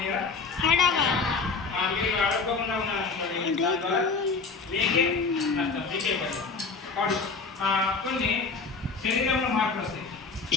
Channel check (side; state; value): right; quieter; 4.6 dB